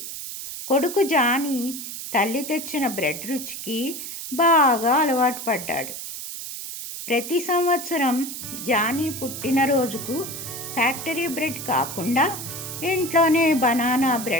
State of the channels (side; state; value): right; noise; hiss, 8 dB below the sound